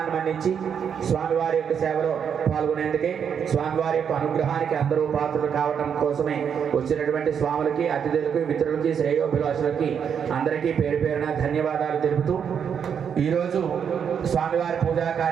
మన్నించి స్వామివారి యొక్క సేవలో పాల్గొనేందుకే స్వామివారి యొక్క అనుగ్రహానికి అందరూ పాత్రలు కావటం కోసమే వచ్చినటువంటి స్వాములకి అతిథులకి మిత్రులకి శ్రేయోభిలాషులకి అందరికీ పేరు పేరున ధన్యవాదాలు తెలుపుతూ ఈరోజు స్వామివారి పూజా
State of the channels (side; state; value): left; quieter; 7.5 dB